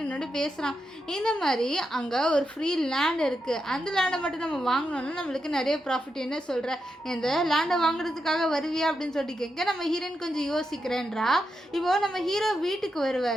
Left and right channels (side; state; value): both; normal; correlation 0.85